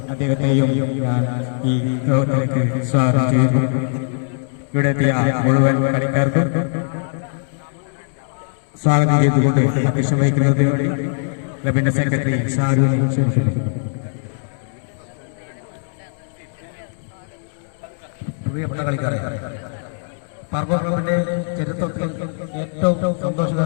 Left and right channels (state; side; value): silent; right; digital silence